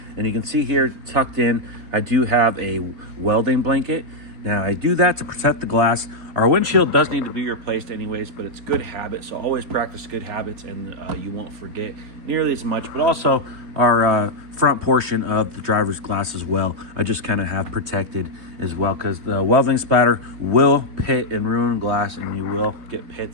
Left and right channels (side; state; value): left; late; 3.3 ms